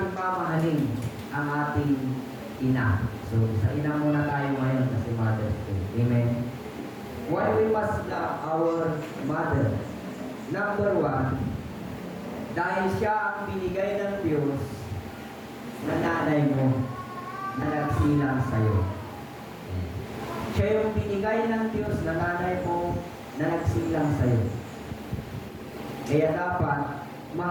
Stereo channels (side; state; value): both; identical; correlation 1.00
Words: mamahalin ang ating ina? So, sa ina muna tayo ngayon kasi Mother's Day. Amen? Why we must love our mother? Number one, dahil siya ang binigay ng Diyos na nanay mo na nagsilang sa'yo. Siya yung binigay ng Diyos na nanay mo na nagsilang sa'yo. Kaya dapat